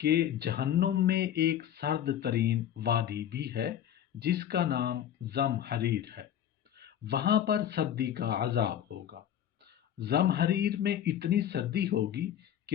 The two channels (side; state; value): right; quieter; 10.4 dB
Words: جہنم میں ایک سرد ترین وادی بھی ہے جس کا نام زمہریر ہے؟ وہاں پر سردی کا عذاب ہوگا۔ زمہریر میں اتنی سردی ہوگی